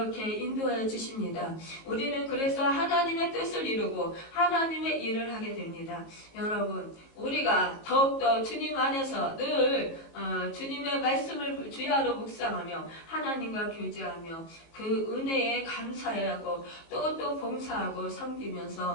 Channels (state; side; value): late; right; 19 ms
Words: 인도해 주십니다. 우리는 그래서 하나님의 뜻을 이루고 하나님의 일을 하게 됩니다. 여러분, 우리가 더욱더 주님 안에서 늘 주님의 말씀을 주야로 묵상하며 하나님과 교제하며 그 은혜에 감사하고 또 봉사하고